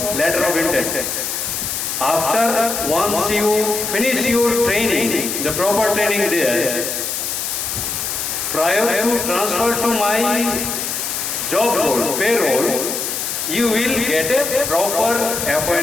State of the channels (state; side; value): noise; left; hiss, 3 dB below the sound